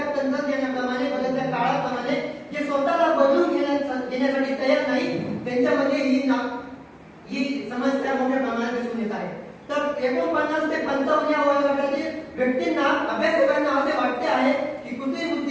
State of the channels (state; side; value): identical; both; correlation 1.00